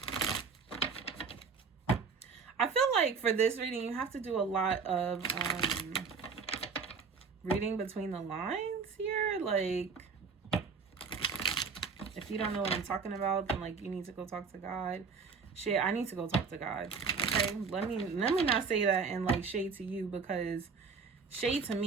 I feel like for this reading, you have to do a lot of reading between the lines here. Like, if you don't know what I'm talking about, then like you need to go talk to God. Shit, I need to go talk to God. Okay, let me not say that and like shade to you, because shade to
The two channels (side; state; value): left; quieter; 5.2 dB